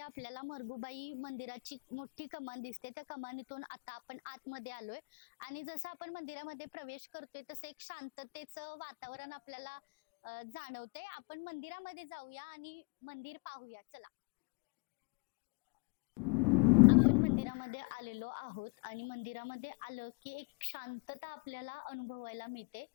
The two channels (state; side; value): quieter; right; 32.8 dB